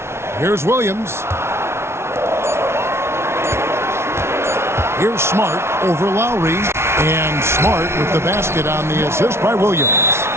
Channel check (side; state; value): left; late; 0.12 ms